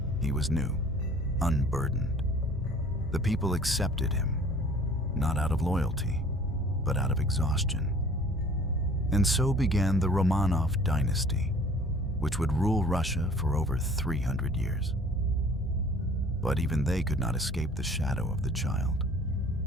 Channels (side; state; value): both; normal; correlation 0.51